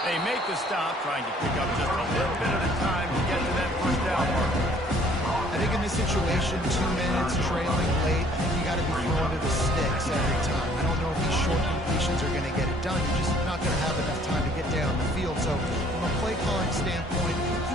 They make the stop, trying to pick up just a little bit at a time to get to that first down mark. I think in this situation, 2 minutes, trailing late, I think you got to be throwing to the sticks every time. I don't know if these short completions are going to get it done. You're just not going to have enough time to get down the field. So from a play calling standpoint,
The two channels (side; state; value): both; normal; correlation 0.58